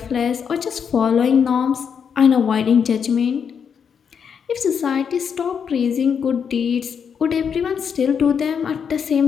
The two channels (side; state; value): right; quieter; 7.0 dB